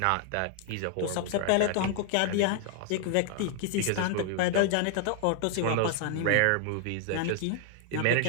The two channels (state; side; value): different; both; correlation 0.00